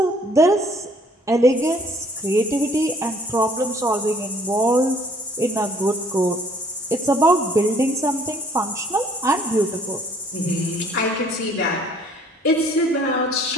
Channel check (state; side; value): normal; both; correlation 0.59